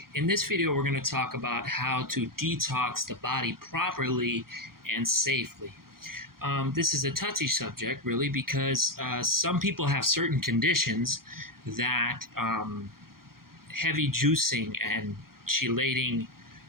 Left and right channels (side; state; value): left; late; 0.92 ms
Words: in this video, we're going to talk about how to detox the body properly and safely. This is a touchy subject, really, because some people have certain conditions that heavy juicing and chelating,